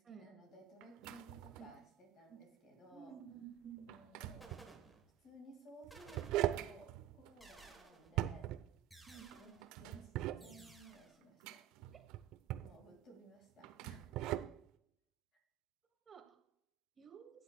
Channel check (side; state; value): left; quieter; 12.0 dB